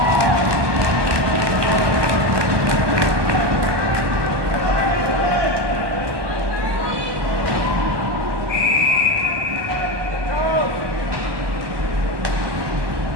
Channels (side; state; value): left; late; 1.2 ms